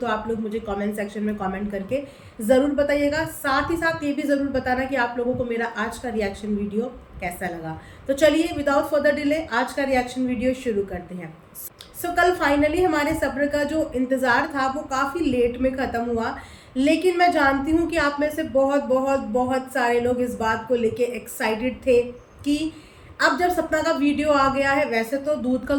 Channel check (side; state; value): both; identical; correlation 1.00